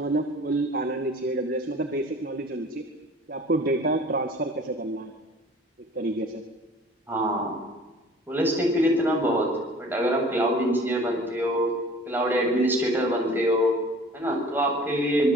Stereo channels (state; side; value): normal; both; correlation 0.47